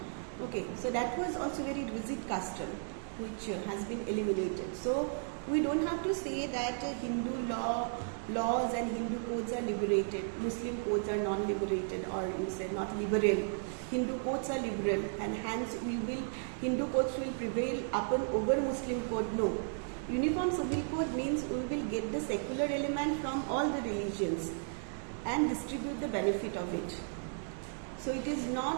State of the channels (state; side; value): silent; left; digital silence